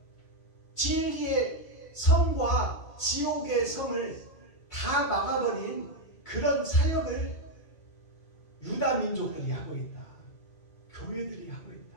진리의 성과 지옥의 성을 다 막아버린 그런 사역을 유다 민족들이 하고 있다. 교회들이 하고 있다.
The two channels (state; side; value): late; right; 2.2 ms